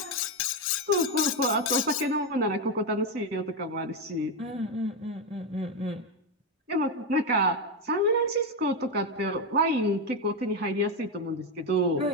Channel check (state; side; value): normal; both; correlation 0.08